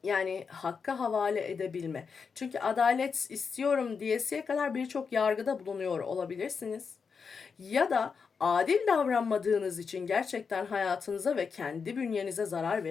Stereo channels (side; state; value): right; quieter; 5.7 dB